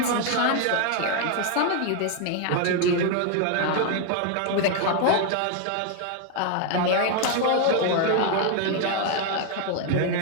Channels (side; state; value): both; different; correlation 0.01